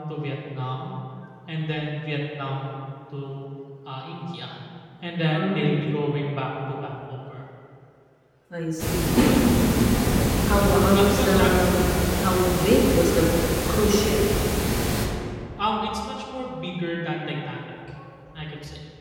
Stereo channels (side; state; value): both; identical; correlation 1.00